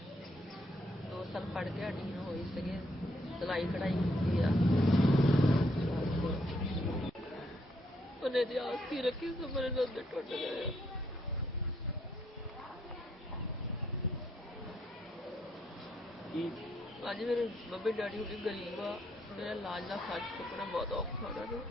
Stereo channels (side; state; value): both; normal; correlation 0.73